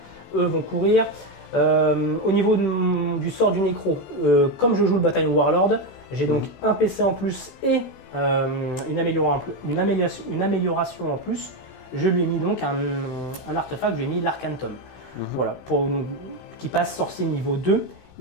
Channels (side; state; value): right; late; 16 ms